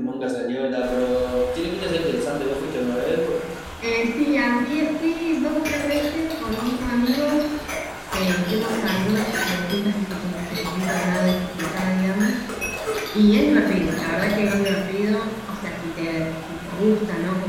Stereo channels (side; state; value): both; identical; correlation 1.00